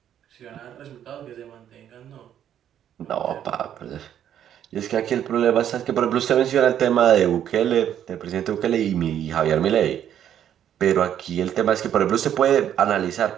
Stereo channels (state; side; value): quieter; left; 10.1 dB